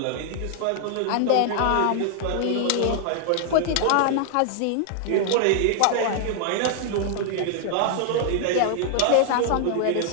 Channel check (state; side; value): different; both; correlation -0.01